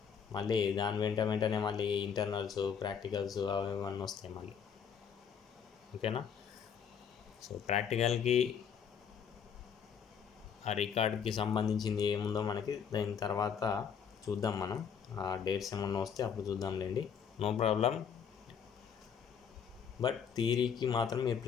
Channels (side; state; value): right; quieter; 7.3 dB